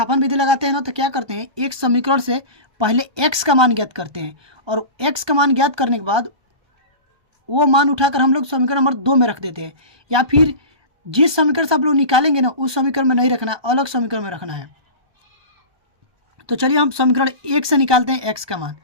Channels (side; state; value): left; late; 1.2 ms